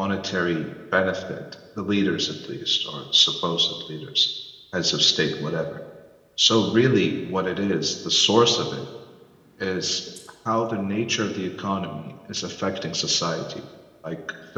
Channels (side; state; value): both; identical; correlation 1.00